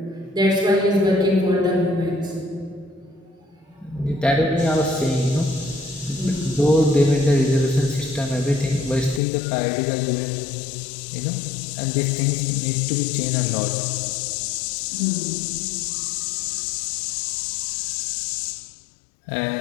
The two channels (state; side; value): drops out; right; at 9.2 s